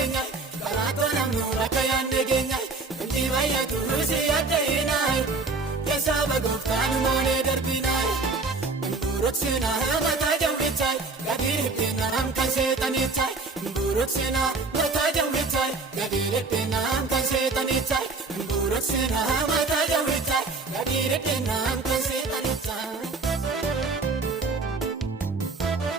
Karaatoo namnu bakka yaadne keenya Inti baay'atu si yaaddeeyinaa Keessaaba gooftaan moolee darbinaa Mburuksina mataa jawwichaa Gadiitti naam kan seexanichaa Mburuksina mataa jawwichaa Gadiitti naam kan seexanichaa Mburuksina mataa jawwichaa Gadiitti naam kan seexanichaa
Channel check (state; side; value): quieter; left; 3.9 dB